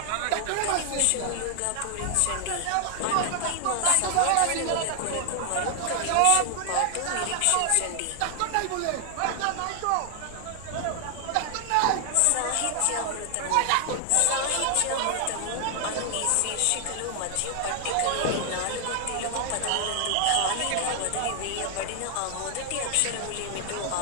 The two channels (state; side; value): different; both; correlation 0.00